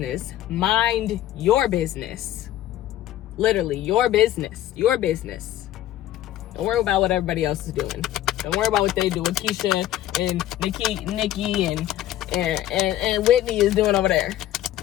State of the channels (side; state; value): right; quieter; 13.2 dB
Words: Mind your business. Literally, your business. Your business. Don't worry about what everybody else is doing. Don't worry about what they do with Keisha and Nikki and and Whitney is doing over there.